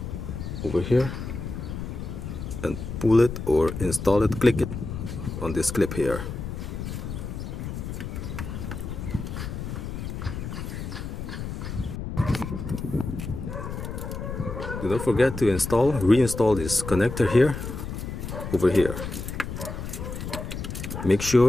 over here, and pull it or install it, click it on this clip here. Do not forget to reinstall this connector here, over here. Make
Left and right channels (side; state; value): left; noise; rumble, 6 dB below the sound